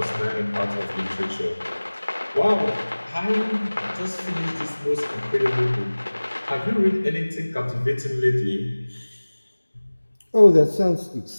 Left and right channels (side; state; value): both; inverted; correlation -1.00